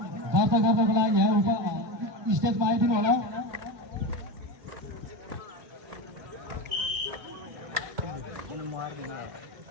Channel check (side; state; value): left; late; 1.2 ms